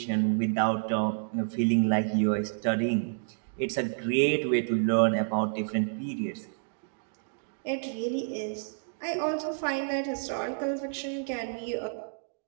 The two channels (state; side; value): silent; left; digital silence